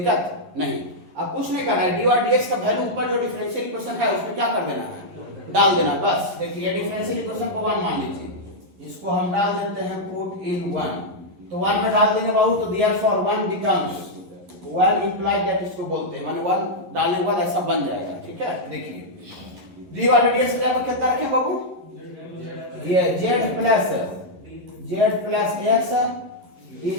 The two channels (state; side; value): late; left; 11 ms